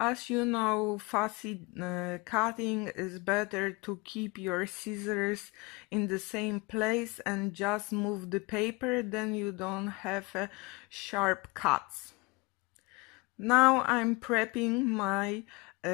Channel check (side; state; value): right; quieter; 25.4 dB